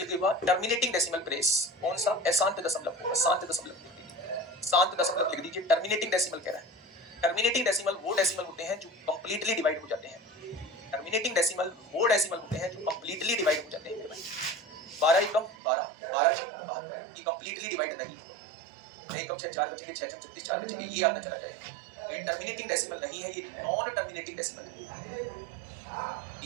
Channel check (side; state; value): left; drops out; at 15.6 s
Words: give a terminating decimal place? कौन सा? अशांत दशमलव होगा। शांत दशमलव लिख दीजिए, शांत दशमलव लिख दीजिए। टर्मिनेटिंग डेसिमल कह रहा है। टर्मिनेटिंग डेसिमल वो डेसिमल होते हैं जो कंप्लीटली डिवाइड हो जाते हैं। टर्मिनेटिंग डेसिमल वो डेसिमल होते हैं जो कंप्लीटली डिवाइड हो जाते हैं मेरे भाई। 12 एकम 12, 12 6 72, ये कंप्लीटली डिवाइड नहीं होगा। 6 एकम 6 4 बचेंगे, 6 6 36 4 बचेंगे, ये आता चला जाएगा। ये टर्मिनेटिंग डेसिमल नहीं है, ये नॉन टर्मिनेटिंग डेसिमल है।